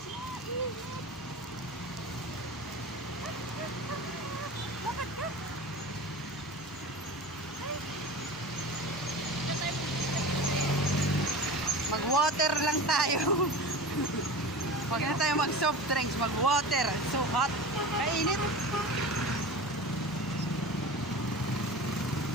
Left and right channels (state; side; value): normal; both; correlation 0.33